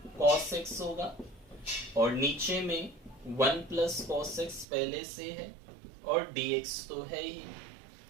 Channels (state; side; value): drops out; left; at 4.7 s